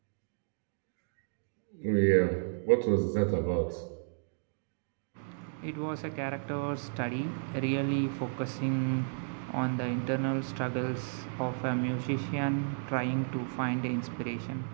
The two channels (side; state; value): left; silent; digital silence